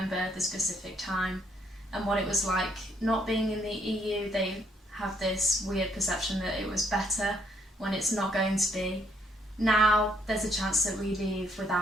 the specific time and what it was like not being in the EU. They have this weird perception that it was better when it's not going to be. Now there's a chance that we leave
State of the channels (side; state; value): both; normal; correlation 0.70